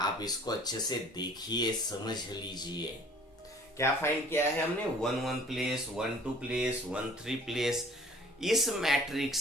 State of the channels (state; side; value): normal; both; correlation 0.52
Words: इसको अच्छे से देखिए, समझ लीजिए। क्या फाइंड किया है हमने? 1 प्लेस, 1 प्लेस, 3 प्लेस। इस